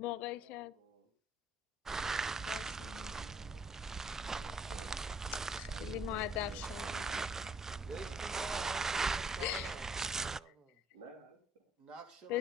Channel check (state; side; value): normal; both; correlation 0.64